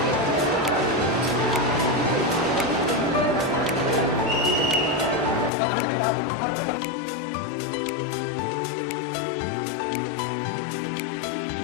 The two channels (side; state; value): right; drops out; at 5.5 s